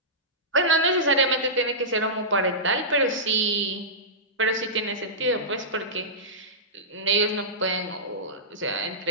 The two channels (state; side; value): normal; both; correlation -0.17